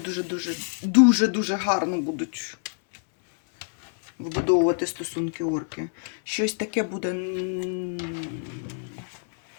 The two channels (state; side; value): silent; right; 61 dB below the other